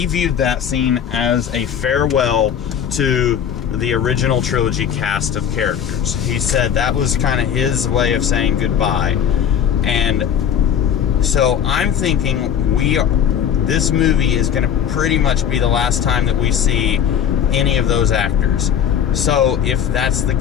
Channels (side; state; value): right; quieter; 8.7 dB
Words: viewed that scene as a farewell to the original trilogy cast of characters. He said that was kind of his way of saying goodbye. And so I'm thinking this movie is going to pretty much be the last time that we see any of those actors. So if that's the